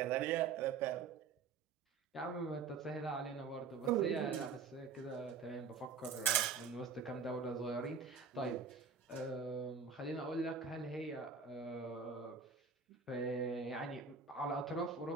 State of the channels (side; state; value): left; quieter; 5.4 dB